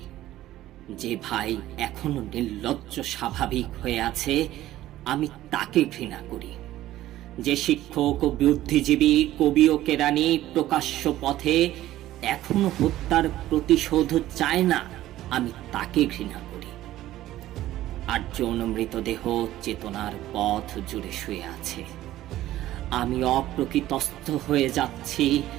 যে ভাই এখনো নির্লজ্জ স্বাভাবিক হয়ে আছে, আমি তাকে ঘৃণা করি। যে শিক্ষক ও বুদ্ধিজীবী, কবি ও কেরানি প্রকাশ্য পথে এখনো হত্যার প্রতিশোধ চায় না, আমি তাকে ঘৃণা করি। 8 জন মৃতদেহ চেতনার পথ জুড়ে শুয়ে আছে। আমি অপ্রকৃতস্থ হয়ে যাচ্ছি।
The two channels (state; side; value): quieter; left; 14.5 dB